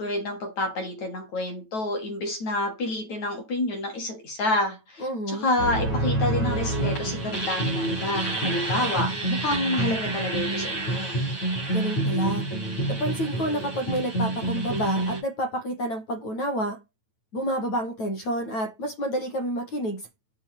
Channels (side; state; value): right; late; 9.1 ms